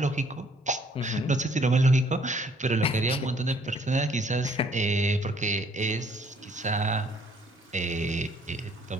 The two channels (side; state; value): both; normal; correlation 0.62